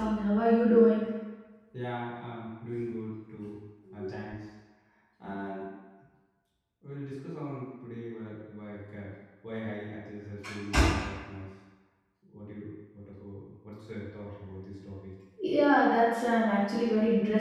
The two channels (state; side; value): identical; both; correlation 1.00